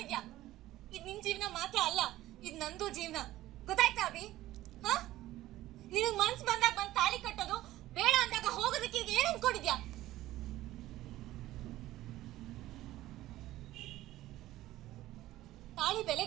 ಇದ್ ನಿನ್ ಜೀವನ ಮಾತ್ರ ಅಲ್ಲ, ಇದ್ ನಂದು ಜೀವನ. ಗೊತ್ತಾಯ್ತಾ ಅಭಿ? ನಿನಗ್ ಮನ್ಸ್ ಬಂದಾಗ ಬಂದ್ ತಾಳಿ ಕಟ್ಟೋದು, ಬೇಡ ಅಂದಾಗ ಹೋಗೋದಕ್ಕೆ ಈಗ ಏನ್ ಅನ್ಕೊಂಡಿದ್ಯಾ? ತಾಳಿ ಬೆಲೆ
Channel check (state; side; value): quieter; left; 15.6 dB